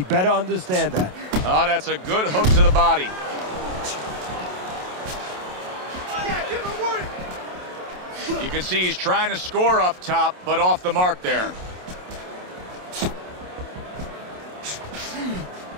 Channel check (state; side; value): late; left; 27 ms